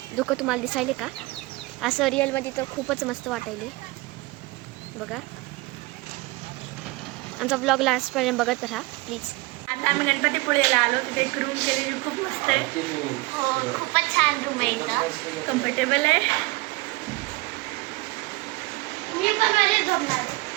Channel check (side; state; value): left; quieter; 23.6 dB